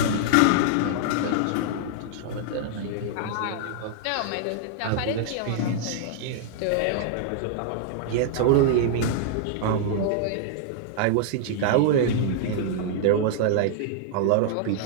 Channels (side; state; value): both; different; correlation -0.01